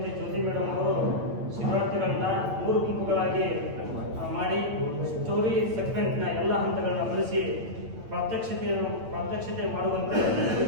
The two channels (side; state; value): left; late; 9.0 ms